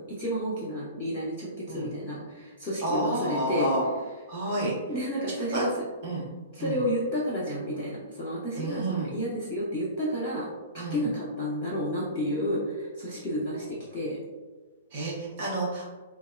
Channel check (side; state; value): both; inverted; correlation -0.30